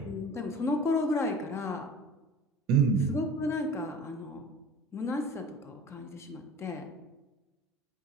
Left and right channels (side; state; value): both; normal; correlation 0.41